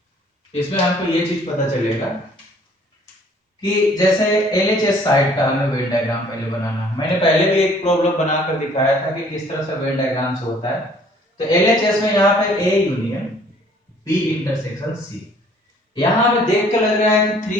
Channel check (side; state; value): both; normal; correlation 0.57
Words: इसमें आपको ये चीज पता चलेगा कि जैसे एलएचएस साइड का हमें वेन डायग्राम पहले बनाना है। मैंने पहले भी एक प्रॉब्लम बनाकर दिखाया था कि किस तरह से वेन डायग्राम से होता है। तो एलएचएस में यहाँ पे A union B intersection C, यहाँ हमें देख के लग रहा है कि